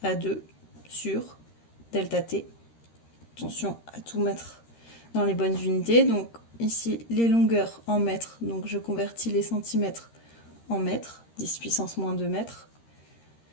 A2 sur delta T. Attention à tout mettre dans les bonnes unités. Donc ici, les longueurs en mètres. Donc je convertis les centimètres en mètres, 10 puissance moins 2 mètres.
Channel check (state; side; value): late; right; 13 ms